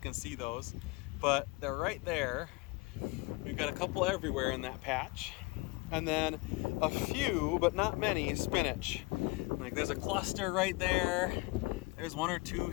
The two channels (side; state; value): right; quieter; 24.9 dB